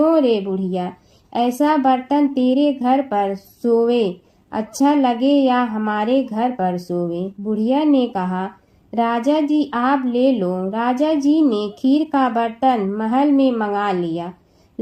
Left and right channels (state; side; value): identical; both; correlation 1.00